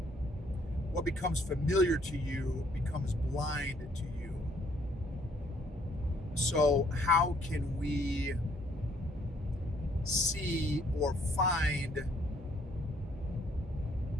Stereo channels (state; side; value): normal; both; correlation 0.65